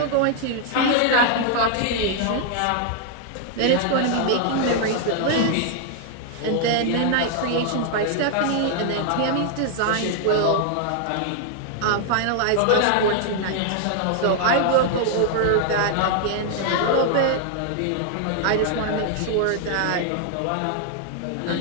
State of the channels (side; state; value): both; different; correlation 0.00